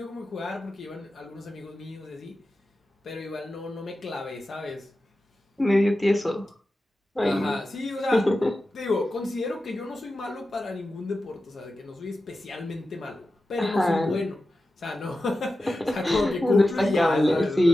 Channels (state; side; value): normal; both; correlation 0.93